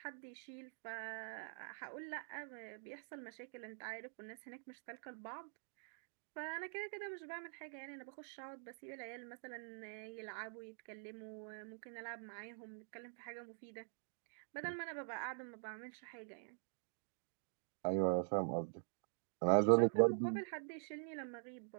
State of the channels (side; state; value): left; silent; digital silence